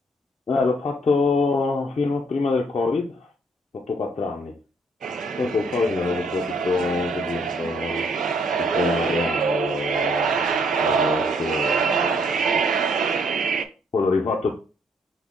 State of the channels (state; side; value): normal; both; correlation 0.66